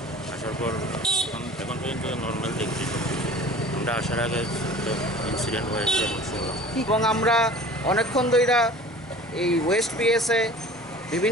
আসার পর এখন পর্যন্ত নর্মাল দেখছি। আমরা আসার আগে ইনসিডেন্ট হয়েছে এবং শুনলাম। এবং আমরা অনেকক্ষণ ধরে এই ওয়েস্ট পিএসে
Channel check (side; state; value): both; normal; correlation 0.43